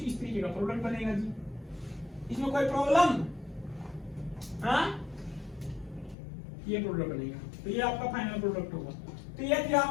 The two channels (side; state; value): right; drops out; at 6.2 s